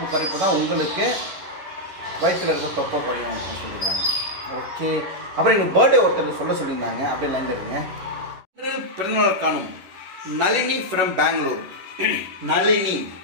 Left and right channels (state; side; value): late; left; 11 ms